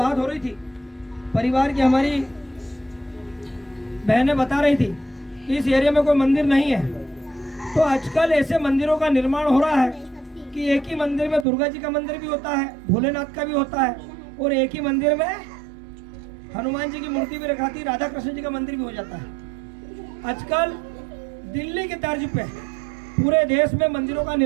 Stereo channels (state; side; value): drops out; left; at 11.5 s